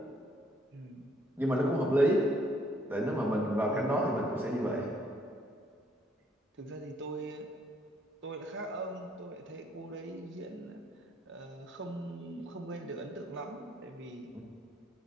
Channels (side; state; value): both; normal; correlation 0.67